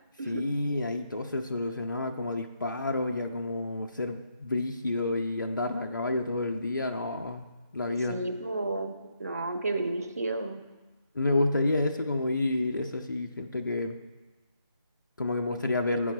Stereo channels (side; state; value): both; inverted; correlation -0.77